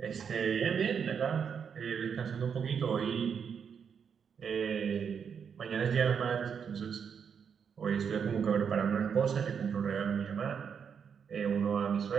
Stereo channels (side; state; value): left; quieter; 7.0 dB